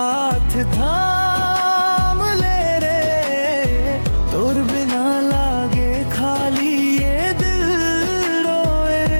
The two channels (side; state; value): both; inverted; correlation -1.00